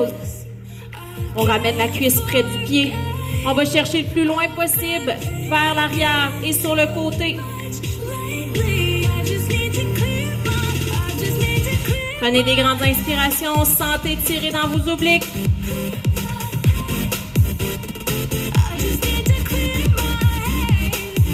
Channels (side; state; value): both; identical; correlation 1.00